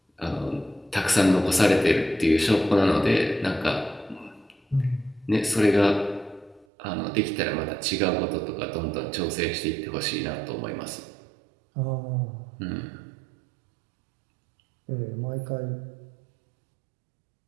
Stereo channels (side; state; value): left; drops out; at 6.7 s